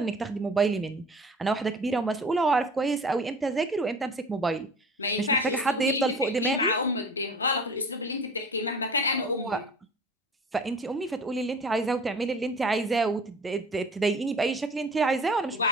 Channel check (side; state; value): both; normal; correlation 0.43